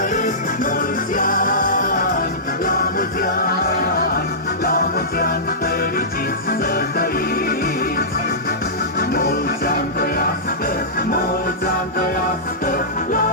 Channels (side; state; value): both; normal; correlation -0.18